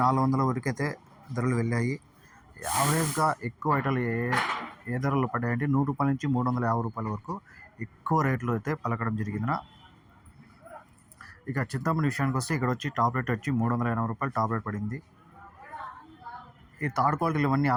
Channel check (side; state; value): both; identical; correlation 1.00